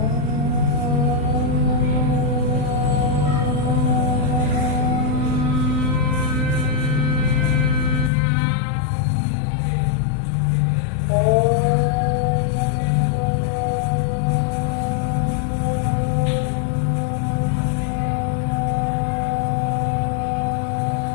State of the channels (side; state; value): right; drops out; at 8.1 s